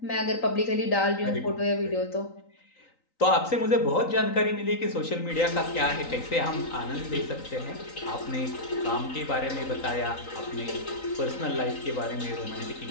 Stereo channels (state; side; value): late; right; 3.9 ms